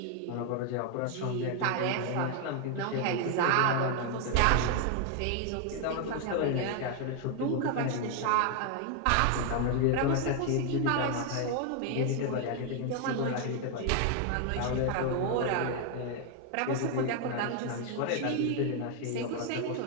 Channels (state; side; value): different; both; correlation 0.01